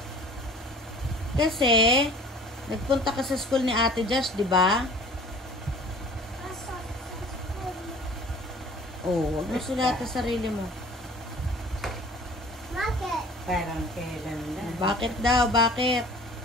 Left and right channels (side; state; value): both; normal; correlation 0.47